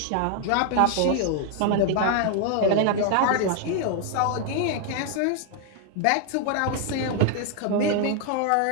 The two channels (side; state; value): both; different; correlation 0.00